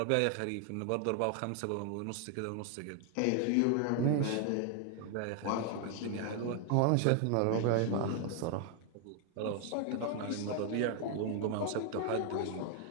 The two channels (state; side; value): different; both; correlation 0.00